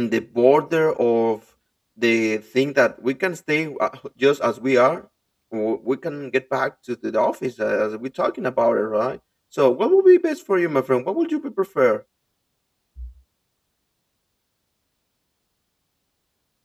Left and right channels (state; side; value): identical; both; correlation 1.00